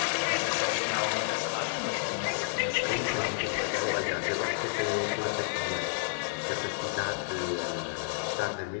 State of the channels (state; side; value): silent; right; digital silence